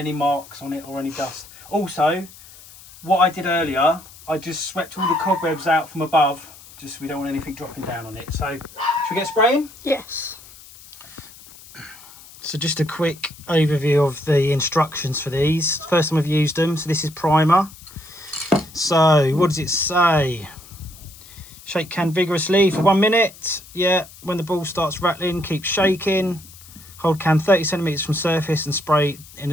marks on it or any dust. Also, what I did earlier I just swept all the cobwebs out from above, just so we don't want anything dropping down on it. So, should we get spraying? Yes. So just a quick overview of the instructions for these. First time I've used them, so this is primer. So, what does it say? Shake can vigorously for 1 minute. Yeah, when the ball starts rattling, keep shaking. Hold can 30 centimeters from surface and spray in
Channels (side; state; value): left; noise; hiss, 20 dB below the sound